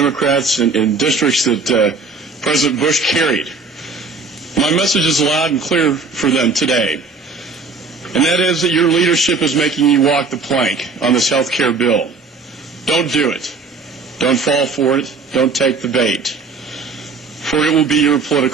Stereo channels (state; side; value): quieter; left; 4.2 dB